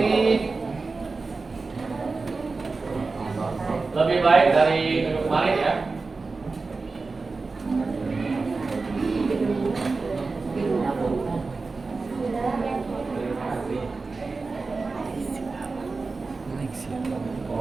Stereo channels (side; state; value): left; quieter; 4.0 dB